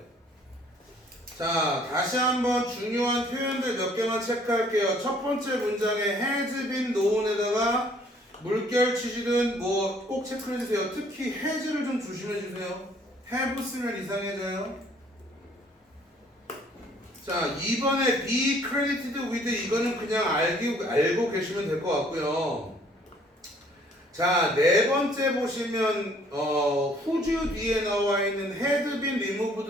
자, 다시 한번 중요한 표현들 몇 개만 체크할게요. 첫 번째 문장에 has been known에다가 물결 치시든 뭐 꼭 체크해주세요. 특히 has를 좀 조심해주세요. have 쓰면 이상해져요. 자, 2번에 be credited with, 이거는 그냥 알고 계시면 될 것 같고요. 자, 네 번째 보시면 whose 뒤에 나와 있는 had been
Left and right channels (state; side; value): normal; both; correlation 0.60